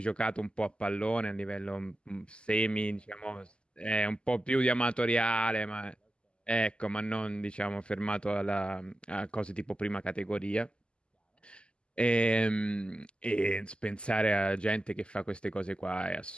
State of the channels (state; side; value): late; right; 0.050 ms